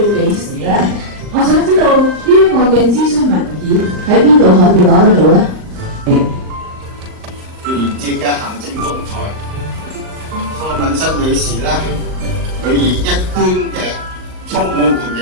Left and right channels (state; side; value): late; left; 38 ms